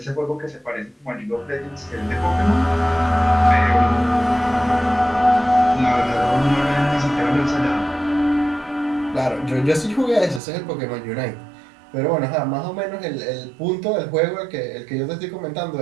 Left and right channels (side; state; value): left; drops out; at 10.4 s